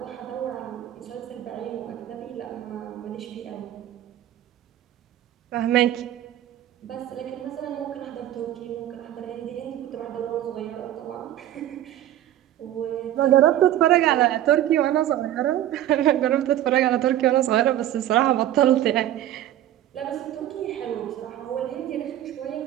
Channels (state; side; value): quieter; left; 12.6 dB